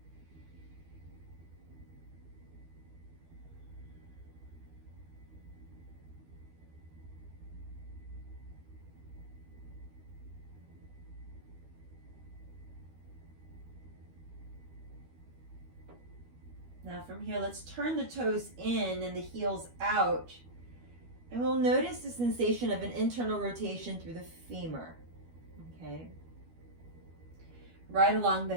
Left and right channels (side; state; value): left; late; 12 ms